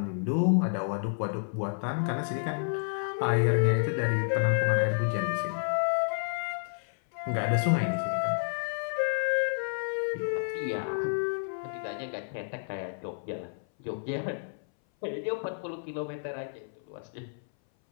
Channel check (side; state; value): right; silent; 58 dB below the other